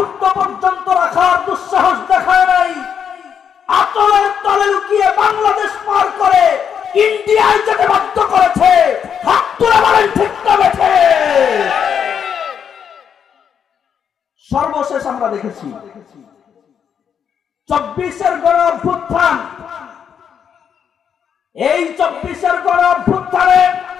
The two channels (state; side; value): quieter; right; 7.7 dB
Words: পর্যন্ত রাখার দুঃসাহস দেখায় নাই। আতলের তলে লুকিয়ে বাংলাদেশ পার করে ইন্ডিয়ায় যেতে বাধ্য করেছে। হাত তুলে বলেন ঠিক না বেঠে? সর্বশেষ আমরা দেখেছি 24-এর গণ অভ্যুত্থান। এই 24-এর গণ অভ্যুত্থানে